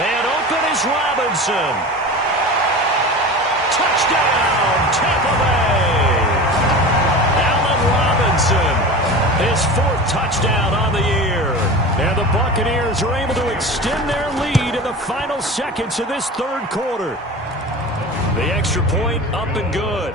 open is Robinson. Touchdown, Tampa Bay. Allen Robinson, his 4th touchdown on the year. And the Buccaneers are able to extend their lead in the final seconds of this 3rd quarter. The extra point up and good.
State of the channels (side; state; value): both; normal; correlation 0.32